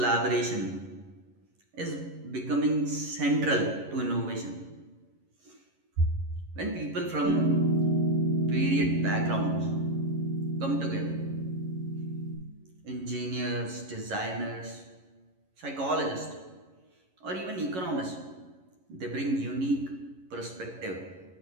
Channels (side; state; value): left; late; 11 ms